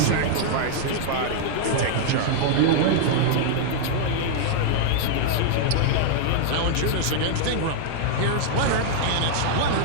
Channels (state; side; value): different; both; correlation -0.01